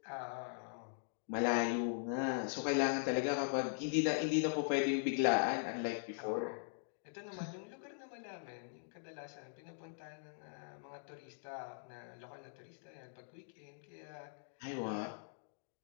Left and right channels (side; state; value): right; silent; digital silence